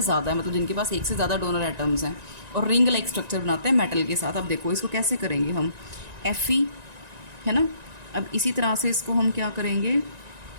है, मतलब जिनके पास 1 से ज़्यादा डोनर एटम्स हैं और रिंग लाइक स्ट्रक्चर बनाते हैं मेटल के साथ। अब देखो इसको कैसे करेंगे हम, Fe है ना। अब इसी तरह से इसको हम क्या करेंगे,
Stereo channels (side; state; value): left; late; 1.9 ms